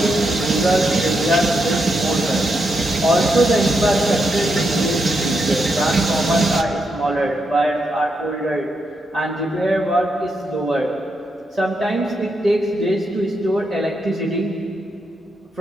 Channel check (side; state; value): both; normal; correlation 0.82